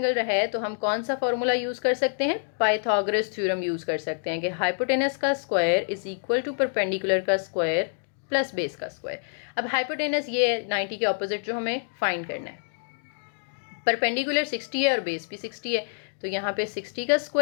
है तो हम कौन सा फॉर्मूला यूज़ कर सकते हैं, पाइथागोरस थ्योरम यूज़ कर सकते हैं कि हाइपोटेनस का square is equal to perpendicular का स्क्वायर प्लस बेस का स्क्वायर। अब हाइपोटेनस ये 90 के ऑपोजिट जो हमें फाइंड करना है, परपेंडिकुलर 60 है और बेस भी 60 है, तो यहाँ पे 60 का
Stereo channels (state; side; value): silent; right; digital silence